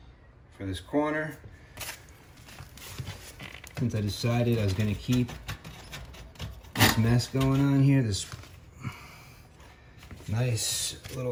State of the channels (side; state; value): both; identical; correlation 1.00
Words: for this corner, since I decided I was gonna keep this mess going on here, this nice